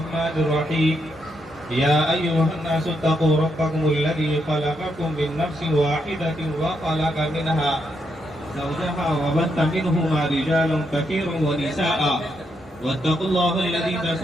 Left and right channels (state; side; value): normal; both; correlation 0.79